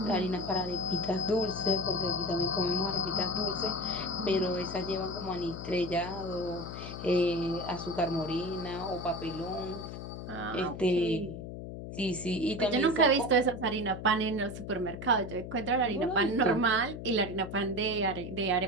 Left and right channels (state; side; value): noise; left; hum, 9 dB below the sound